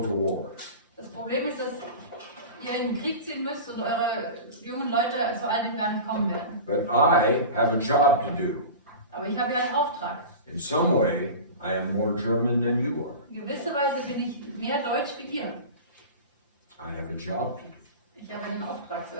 to war. Das Problem ist, dass ihr in den Krieg ziehen müsst und eure jungen Leute zu all dem gar nicht kommen werden. But I have a job to do. Aber ich habe ja einen Auftrag. In some way, I am more German than you are. In gewisser Weise bin ich mehr Deutsch wie ihr. I have a job to do. Ich habe einen Auftrag zu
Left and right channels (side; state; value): both; inverted; correlation -0.32